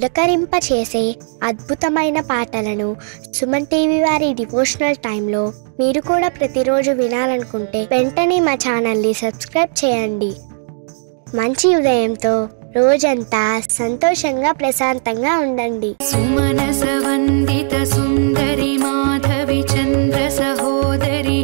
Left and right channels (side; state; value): left; silent; digital silence